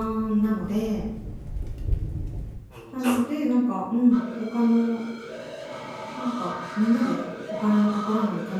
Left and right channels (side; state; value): both; identical; correlation 1.00